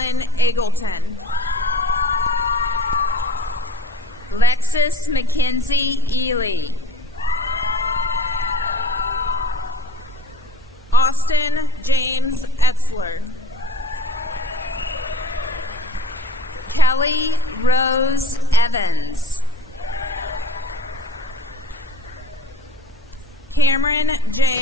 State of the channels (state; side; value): normal; both; correlation 0.44